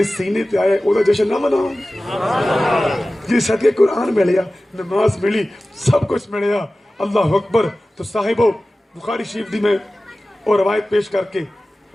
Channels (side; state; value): both; normal; correlation 0.96